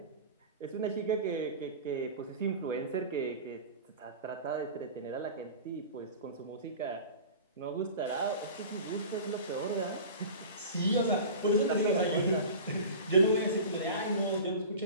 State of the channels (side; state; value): both; inverted; correlation -0.35